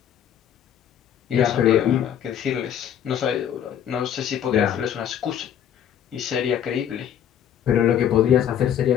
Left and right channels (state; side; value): quieter; right; 9.7 dB